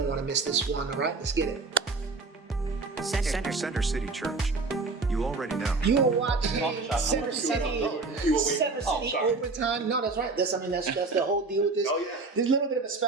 miss this one. All right, let's get it. Center City Church. You already know. You are watching Center City Overtime. No, that's right. That's the whole deal with this. Oh, yeah. There's a little bit of a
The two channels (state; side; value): quieter; left; 3.8 dB